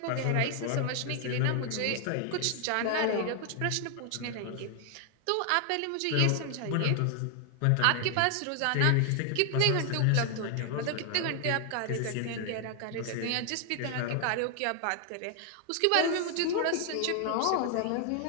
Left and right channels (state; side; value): different; both; correlation 0.00